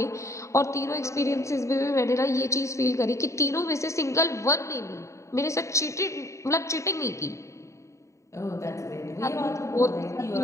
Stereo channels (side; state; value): right; late; 0.14 ms